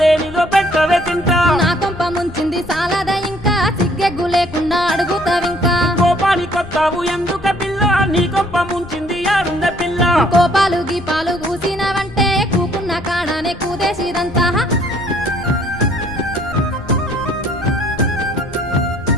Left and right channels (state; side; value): noise; left; rumble, 16 dB below the sound